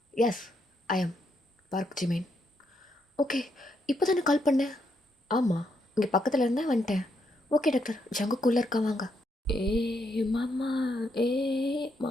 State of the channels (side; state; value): both; normal; correlation 0.77